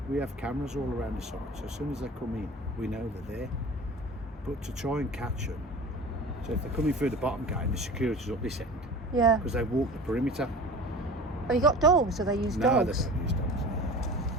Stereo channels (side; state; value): both; normal; correlation 0.38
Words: we have cameras all around the site. So as soon as they come in, we know they're there. But to try and catch them, so if they're coming through the bottom gate and the security's up this end, Yeah. because they walk the perimeter. Have you got dogs? Do they use No, dogs? they don't use dogs.